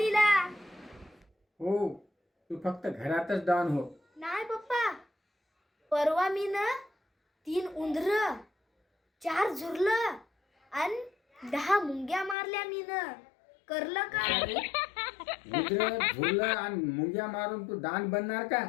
हो, तू फक्त घरातच डान हो. नाही पप्पा, परवा मी ना 3 उंदर, 4 झुरलं आणि 10 मुंग्या मारल्या मी ना. करलं का? उंदरं, झुरलं आणि मुंग्या मारून तू डान बनणार का?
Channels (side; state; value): right; drops out; at 12.4 s